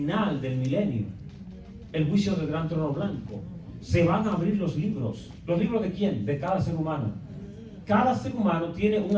del milenio. El juicio del gran trono blanco. Se van a abrir los libros. ¿Los libros de quién? De cada ser humano. Cada ser humano tiene un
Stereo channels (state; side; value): identical; both; correlation 1.00